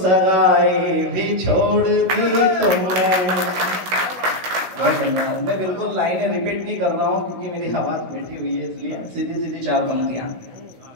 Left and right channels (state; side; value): late; left; 16 ms